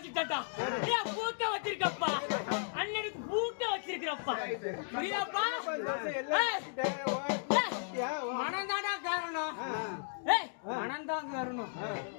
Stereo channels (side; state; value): right; silent; digital silence